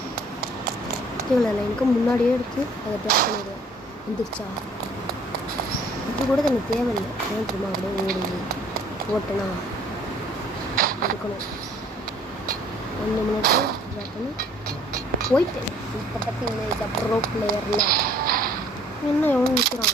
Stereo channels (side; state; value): both; normal; correlation 0.57